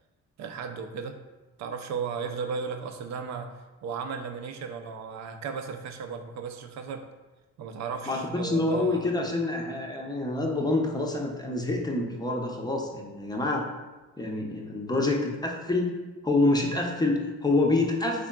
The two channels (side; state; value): both; normal; correlation 0.45